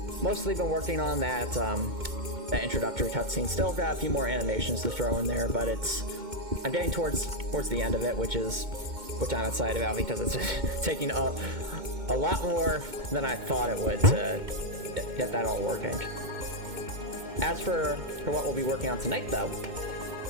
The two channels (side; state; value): left; late; 2.2 ms